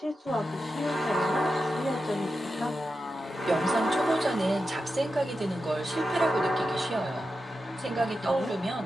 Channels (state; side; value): normal; both; correlation 0.90